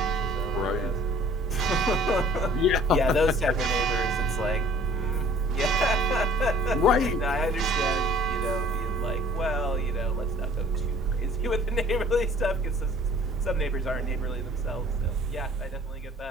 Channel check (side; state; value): both; normal; correlation 0.53